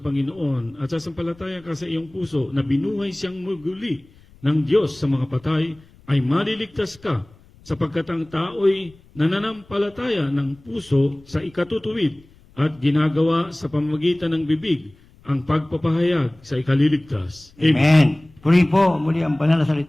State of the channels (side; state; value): left; noise; rumble, 27 dB below the sound